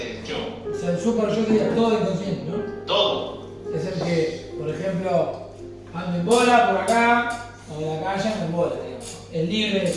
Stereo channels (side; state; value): both; identical; correlation 1.00